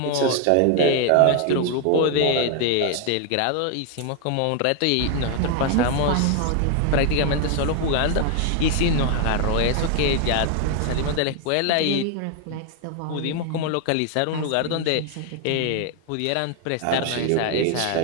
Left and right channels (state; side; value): different; both; correlation 0.00